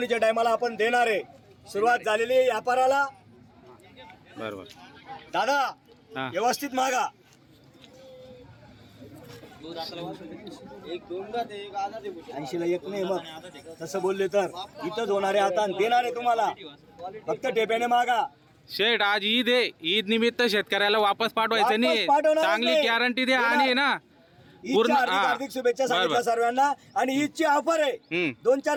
टायमाला आपण देणार आहे. सुरुवात झालेली आहे व्यापाराला. बरोबर दादा व्यवस्थित मागा. 80ला 1 नाही मग तसं बोलले तर इथंच होणारे आता देणारे तुम्हाला. फक्त टेप्याने मागा. शेठ आज ईद आहे. ईद निमित्त शेतकऱ्याला वापस पाठवायचं नाही. पाठवणार चांगली नाही. गॅरंटी द्या आणि ना ईदच्या हार्दिक शुभेच्छा सांगितल्या सर्वांना. आणि ईदची ऑफर आहे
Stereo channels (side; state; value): both; identical; correlation 1.00